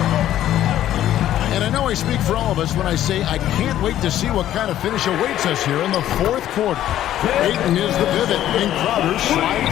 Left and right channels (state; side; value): quieter; right; 12.3 dB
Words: And I know I speak for all of us when I say I can't wait to see what kind of finish awaits us here in the fourth quarter. Ayton is the pivot, and Crowder